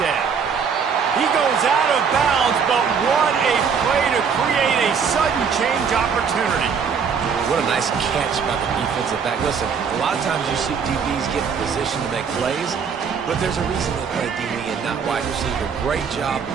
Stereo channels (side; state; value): left; quieter; 6.3 dB